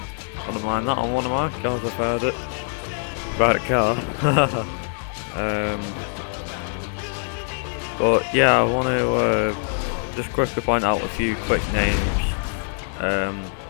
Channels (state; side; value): silent; right; 61 dB below the other